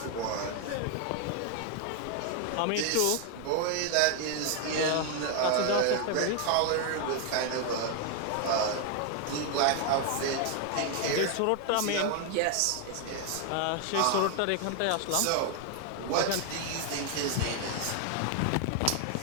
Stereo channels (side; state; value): both; different; correlation 0.01